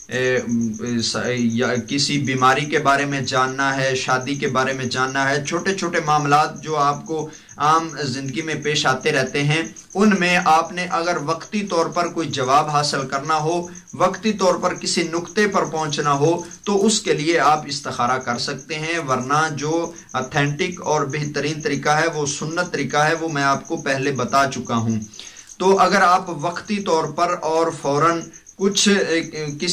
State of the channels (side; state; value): both; identical; correlation 1.00